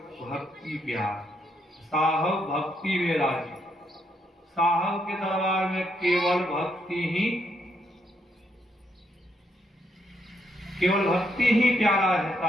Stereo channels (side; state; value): both; normal; correlation 0.76